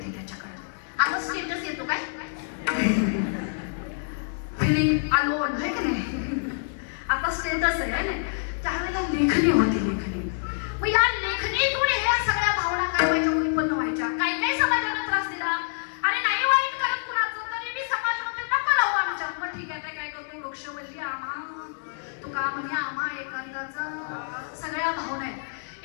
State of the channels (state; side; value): silent; right; digital silence